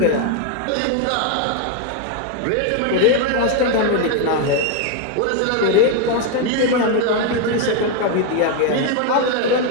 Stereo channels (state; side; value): different; both; correlation 0.01